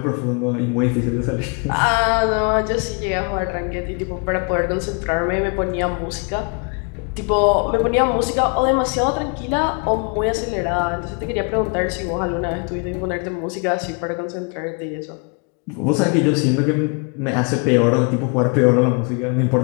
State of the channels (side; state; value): right; quieter; 36.4 dB